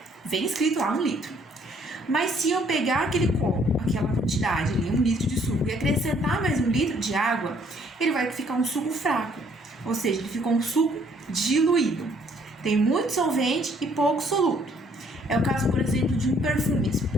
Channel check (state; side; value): normal; both; correlation 0.64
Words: Vem escrito lá 1 litro. Mas se eu pegar aquele copo, aquela quantidade ali, 1 litro de suco, e acrescentar mais 1 litro de água, ele vai ficar um suco fraco. Ou seja, ele ficou um suco diluído. Tem muito solvente e pouco soluto. É o caso, por exemplo, de